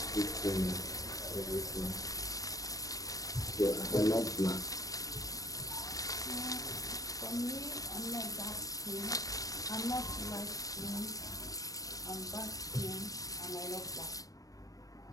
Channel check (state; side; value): late; right; 0.17 ms